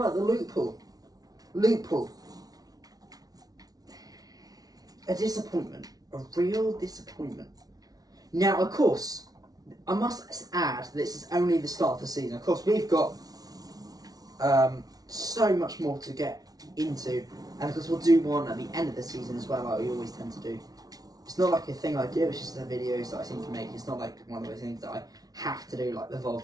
the loot pool. Loot pool. A disappointment. A real disappointment. Now, of course, I must add, this is only the start of the season. Of course, we've got so much more to get into, and of course we'll do one at the end of the season as well, like we always tend to do. It's not like a thing I do, it's just the videos that I seem to make. It's not like one of those things that I have to do, like the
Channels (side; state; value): left; late; 0.18 ms